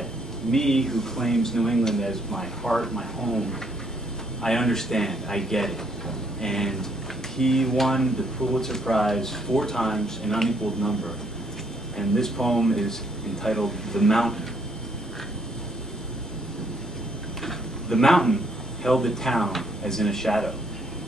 me, who claims New England as my heart, my home, I understand, I get it. And he won the Pulitzer Prize 4 times, an unequaled number. And this poem is entitled The Mountain. The mountain held the town as in a shadow.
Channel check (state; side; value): normal; both; correlation 0.69